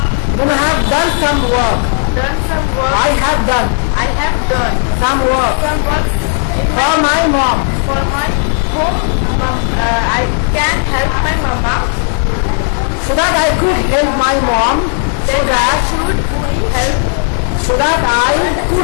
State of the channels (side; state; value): right; silent; 56 dB below the other